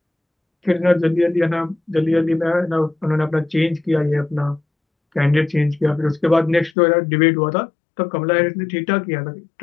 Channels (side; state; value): right; drops out; at 6.7 s